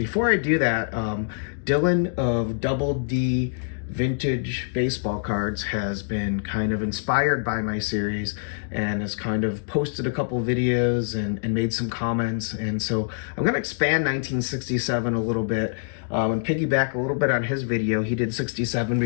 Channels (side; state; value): right; silent; digital silence